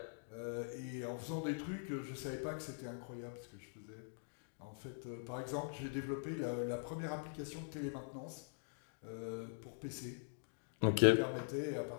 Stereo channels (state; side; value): silent; right; digital silence